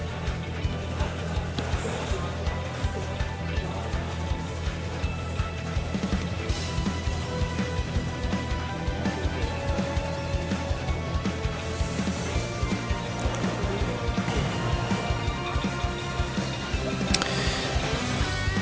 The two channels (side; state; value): both; identical; correlation 1.00